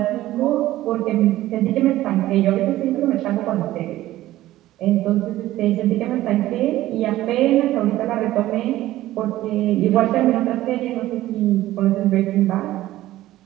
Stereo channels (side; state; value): left; quieter; 15.3 dB